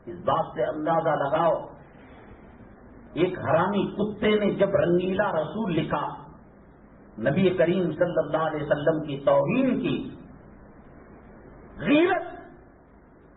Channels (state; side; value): identical; both; correlation 1.00